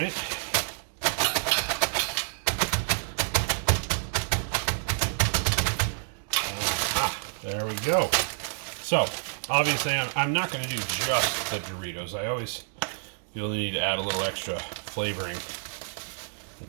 There we go. So, obviously I'm not going to do just the Doritos. I always feel the need to add a little extra flavoring in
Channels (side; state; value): left; silent; digital silence